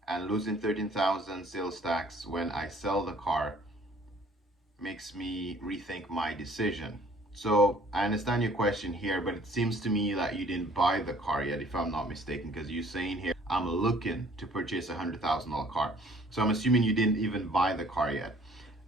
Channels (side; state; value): both; normal; correlation 0.56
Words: and losing 13,000 sales tax when I sell the car makes me rethink my decision. So I understand your question here, but it seems to me that you didn't buy the car yet, if I'm not mistaken, because you're saying here, I'm looking to purchase a $100,000 car. So I'm assuming you didn't even buy the car yet.